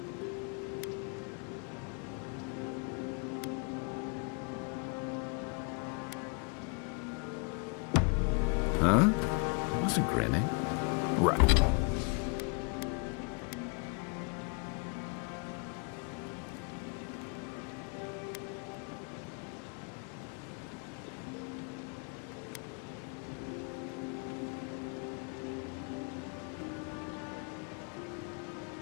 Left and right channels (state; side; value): quieter; right; 36.2 dB